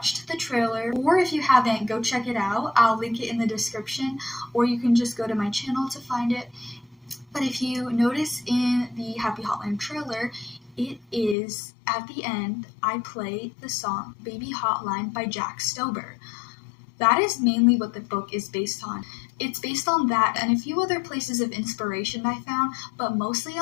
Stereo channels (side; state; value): right; drops out; at 11.4 s